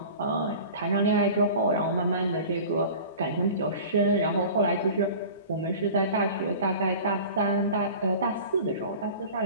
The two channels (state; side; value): inverted; both; correlation -0.39